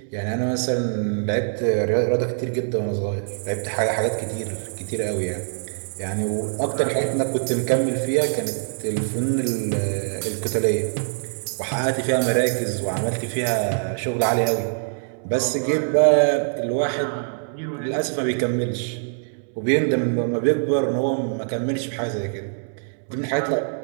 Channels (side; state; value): left; silent; 63 dB below the other